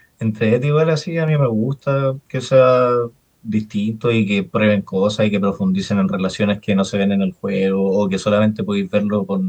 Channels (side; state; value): both; identical; correlation 1.00